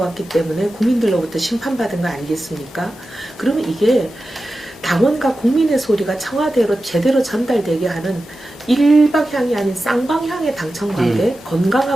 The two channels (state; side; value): normal; both; correlation 0.93